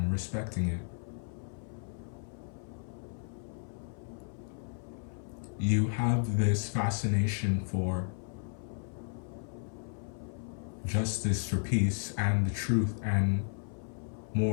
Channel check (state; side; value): silent; right; 55 dB below the other